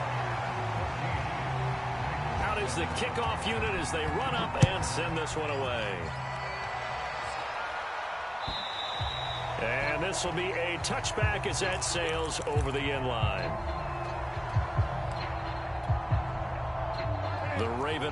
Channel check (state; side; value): identical; both; correlation 1.00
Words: is the kickoff unit as they run up and send this one away. And this will be a touchback as that sails over the end line. The Raven